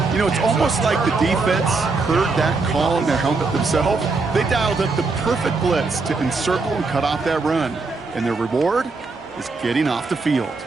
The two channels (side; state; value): left; quieter; 4.0 dB